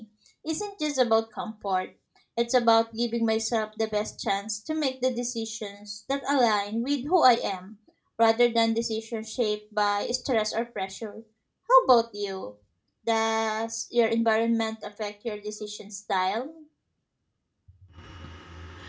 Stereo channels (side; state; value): both; identical; correlation 1.00